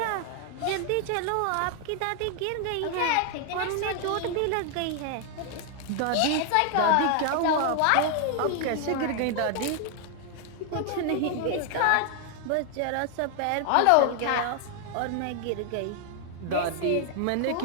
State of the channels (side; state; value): both; different; correlation 0.00